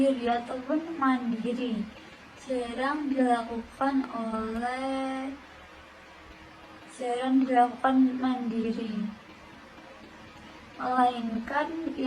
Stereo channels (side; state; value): both; identical; correlation 1.00